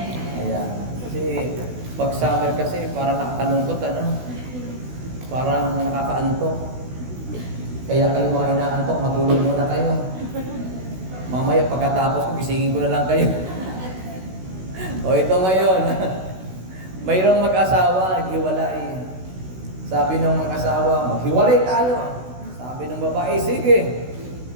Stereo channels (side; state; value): left; late; 16 ms